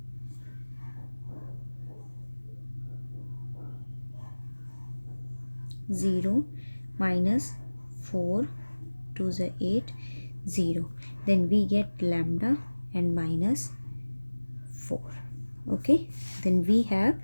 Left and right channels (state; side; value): inverted; both; correlation -1.00